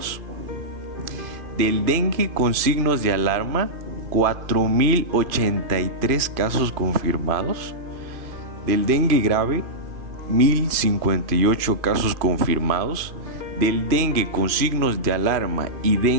Del dengue con signos de alarma, 4.083 casos confirmados. Del dengue grave, 1.058 casos confirmados. Del dengue con signos de alarma y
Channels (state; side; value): late; left; 2.5 ms